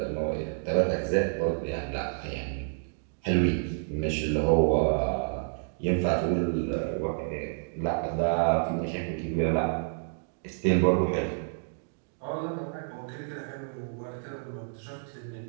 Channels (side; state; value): left; silent; digital silence